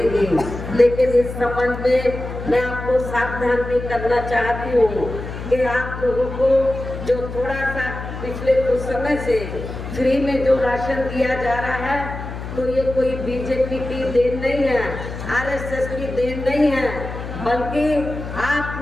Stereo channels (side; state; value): left; noise; hum, 8 dB below the sound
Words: लेकिन इस संबंध में मैं आपको सावधान भी करना चाहती हूँ कि आप लोगों को जो थोड़ा सा पिछले कुछ समय से फ्री में जो राशन दिया जा रहा है, तो ये कोई बीजेपी की देन नहीं है, आरएसएस की देन नहीं है, बल्कि आप